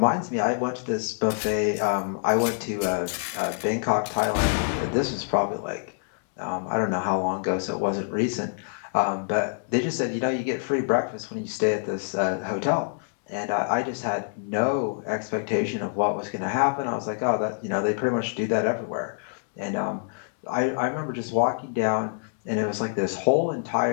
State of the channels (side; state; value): right; silent; digital silence